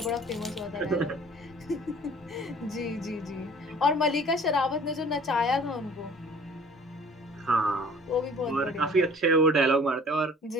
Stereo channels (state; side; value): normal; both; correlation 0.50